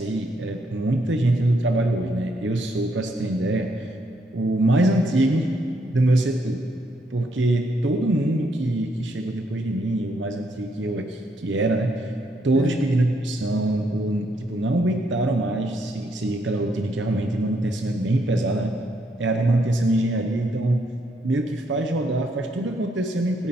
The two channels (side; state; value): both; normal; correlation 0.74